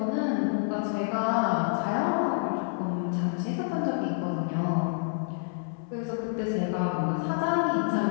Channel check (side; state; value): right; silent; 57 dB below the other